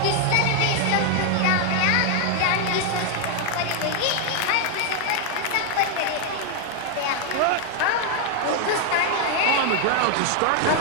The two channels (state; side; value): different; both; correlation 0.00